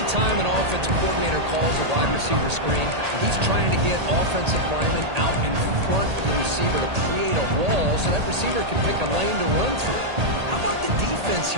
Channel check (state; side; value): late; left; 1.8 ms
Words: an offensive coordinator calls a wide receiver screen, he's trying to get offensive linemen out in front of the receiver to create a wall so that receiver can pick a lane to run through. How about the defense